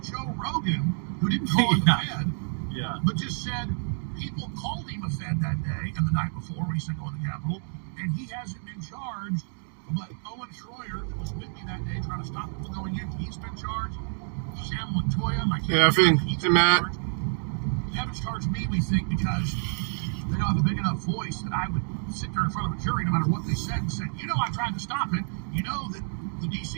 Rogan, who didn't call him a Fed, but just said people called him a Fed that day and the night before when he said go in the Capitol, and he hasn't been charged. But Owen Schroyer, who was with me that day trying to stop people going in, he's been charged. Sam Montoya, my Matt. They haven't charged me, we think, because they don't have a big enough voice that I would sit there in front of a jury no matter what they said and said, you know, I tried to stop it. You know that the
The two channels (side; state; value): left; silent; 59 dB below the other